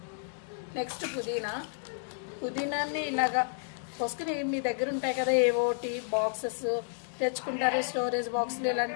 నెక్స్ట్ పుదీనాన్ని ఇలాగా పోసుకుని మీ దగ్గర ఉంటాయి కదా ఏవోటి బాక్సెస్ తెచ్చుకుంటారు, స్టోరేజ్ బాక్సులు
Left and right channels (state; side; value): silent; right; digital silence